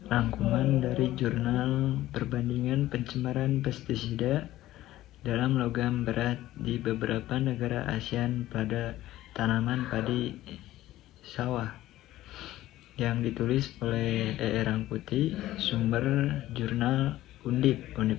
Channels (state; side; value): quieter; right; 15.1 dB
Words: rangkuman dari jurnal perbandingan pencemaran pestisida dalam logam berat di beberapa negara ASEAN pada tanaman padi sawah yang ditulis oleh E. Rangkuti, sumber jurnal Undip